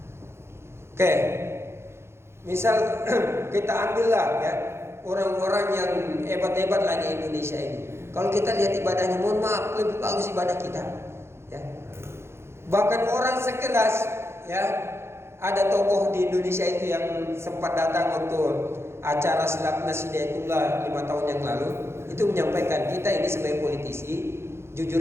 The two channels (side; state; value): left; late; 0.12 ms